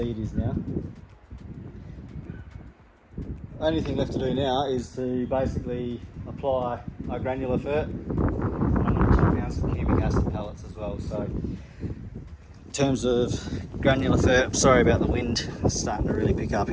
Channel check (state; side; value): identical; both; correlation 1.00